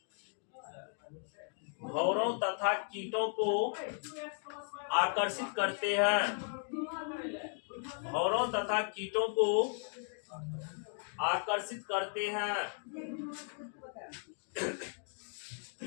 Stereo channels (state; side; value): silent; right; 54 dB below the other